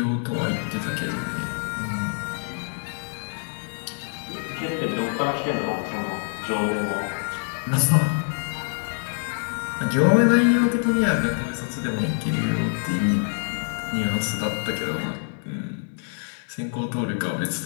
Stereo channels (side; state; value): right; silent; 60 dB below the other